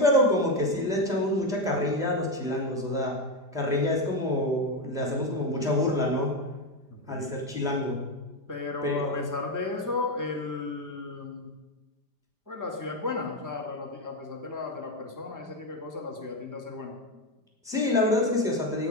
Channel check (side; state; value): left; late; 5.0 ms